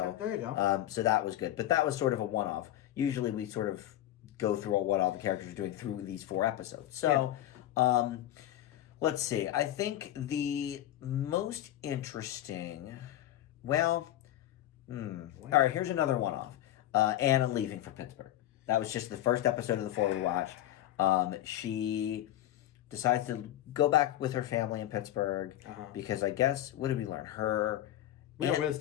there you go. So that was good, but that was sort of a one-off. Usually we sort of go through what all the characters are doing through these 4 episodes. So, let's see. I think the most interesting. Well, all right. Here's another one-off. Anna leaving for Pittsburgh. That was just the first episode of the 4 we watched. She decides to go back with her family in Pittsburgh because I guess, what did we learn? Her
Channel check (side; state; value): right; quieter; 13.3 dB